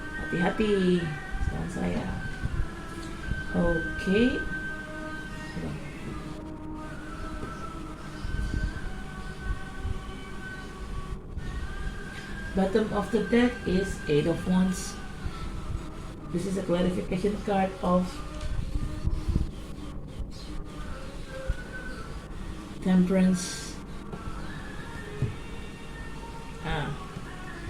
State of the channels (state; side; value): identical; both; correlation 1.00